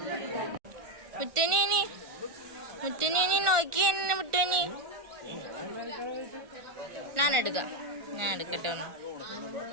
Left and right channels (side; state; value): left; late; 1.4 ms